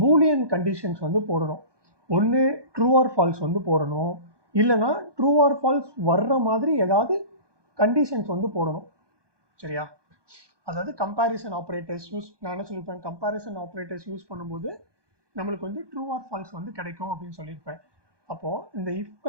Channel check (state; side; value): late; left; 1.2 ms